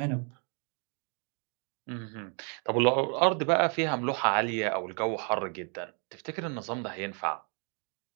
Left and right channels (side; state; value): left; quieter; 39.4 dB